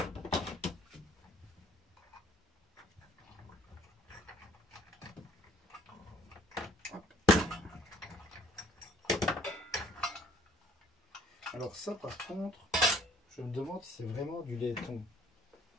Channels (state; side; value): normal; both; correlation 0.59